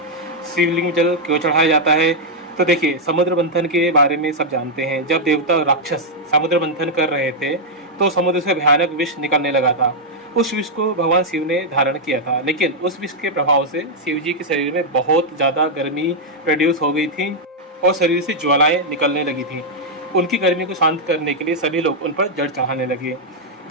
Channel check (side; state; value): both; normal; correlation -0.04